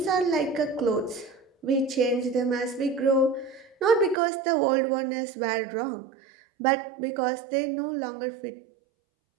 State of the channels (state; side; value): drops out; left; at 4.2 s